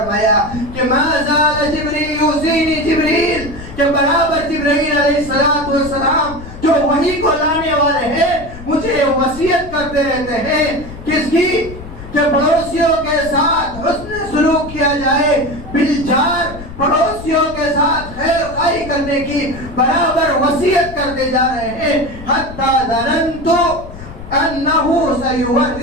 کہ ما زال جبریل یوصینی جبریل، کہ برابر جبرائیل علیہ السلام جو وحی کو لانے والے ہیں مجھے وصیت کرتے رہتے ہیں، کس کی؟ کہ پڑوسیوں کے ساتھ حسن سلوک کیا جائے، بالجار پڑوسیوں کے ساتھ خیر خواہی کرنے کی برابر وصیت کرتے جا رہے ہیں، حتی ظننت انہو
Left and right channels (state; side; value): noise; left; rumble, 14 dB below the sound